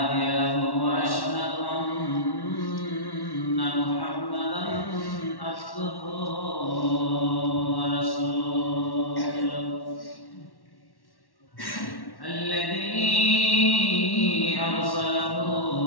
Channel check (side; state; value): right; late; 1.1 ms